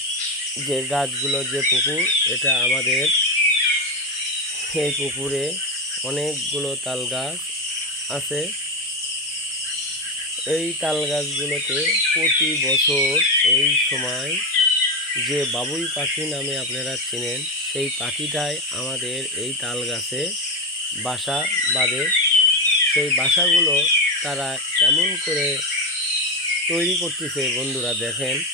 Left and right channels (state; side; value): normal; both; correlation 0.14